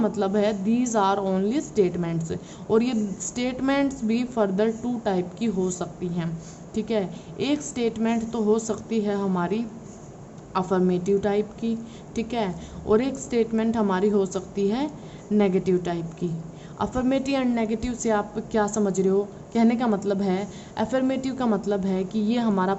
है दीज आर ओनली स्टेटमेंट्स, और ये स्टेटमेंट्स भी फर्दर टू टाइप की हो सकती हैं, ठीक है। एक स्टेटमेंट तो हो सकती है हमारी अफर्मेटिव टाइप की, ठीक है, और एक स्टेटमेंट हमारी हो सकती है नेगेटिव टाइप की। अफर्मेटिव एंड नेगेटिव से आप क्या समझ रहे हो, कहने का मतलब है अफर्मेटिव का मतलब है कि ये हमारा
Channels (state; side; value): identical; both; correlation 1.00